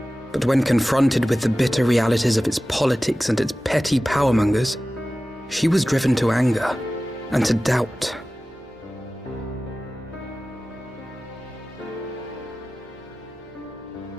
But when confronted with the bitter realities of its politics and its petty powermongers, she was driven to anger and to doubt.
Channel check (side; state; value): both; normal; correlation 0.96